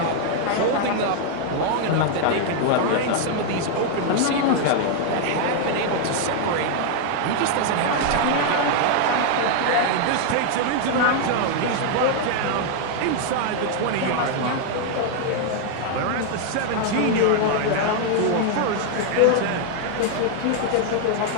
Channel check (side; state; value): both; different; correlation 0.00